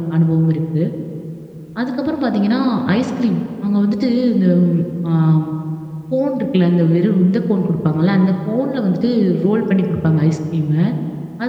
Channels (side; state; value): both; identical; correlation 1.00